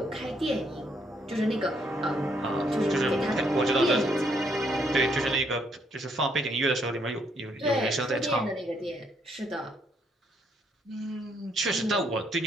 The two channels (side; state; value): both; normal; correlation 0.72